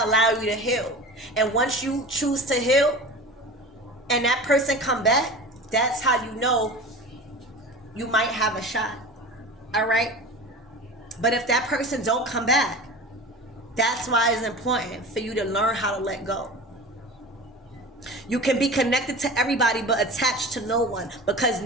allow you to heal. And once you choose to heal and that person come back, that's how you know you might have a shot. All right, but if that person don't come back, that's why it's important for you to learn how to let go. You can be connected to everybody but attached to no one, because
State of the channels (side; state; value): both; normal; correlation 0.34